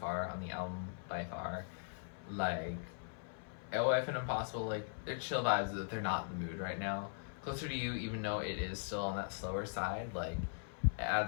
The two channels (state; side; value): silent; right; 51 dB below the other